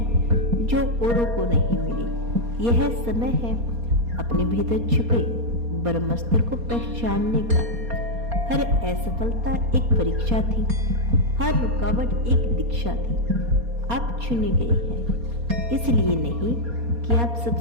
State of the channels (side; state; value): left; late; 4.2 ms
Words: जो औरों को नहीं मिली। यह समय है अपने भीतर छुपे ब्रह्मास्त्र को पहचानने का। हर असफलता एक परीक्षा थी, हर रुकावट एक दीक्षा थी। आप चुने गए हैं, इसलिए नहीं कि आप